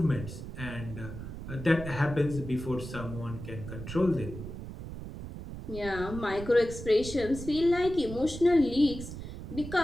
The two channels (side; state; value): right; noise; rumble, 10 dB below the sound